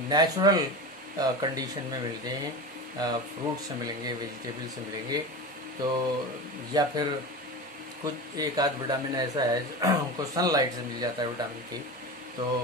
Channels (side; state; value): both; normal; correlation 0.27